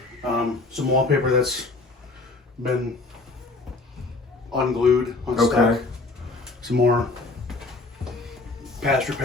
Some wallpaper that's been unglued, unstuck. Okay. Some more patch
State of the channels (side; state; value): right; quieter; 3.5 dB